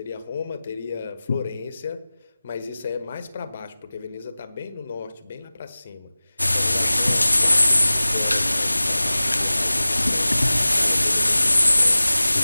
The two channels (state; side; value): inverted; both; correlation -0.98